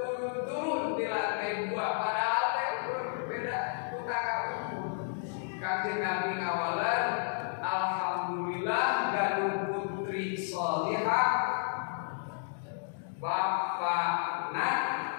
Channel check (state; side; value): silent; right; digital silence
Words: di lantai 2 padahal teh beda utara. Kanjeng Nabi ngawalan, alhamdulillah ganu putri sholihah. Bapakna